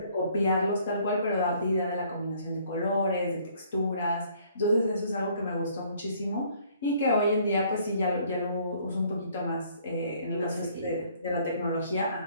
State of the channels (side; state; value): both; inverted; correlation -0.61